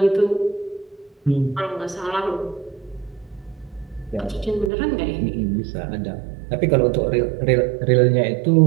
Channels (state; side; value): drops out; left; at 4.7 s